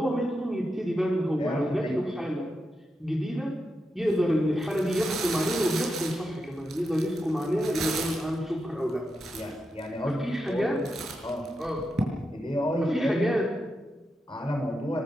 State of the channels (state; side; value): normal; both; correlation 0.87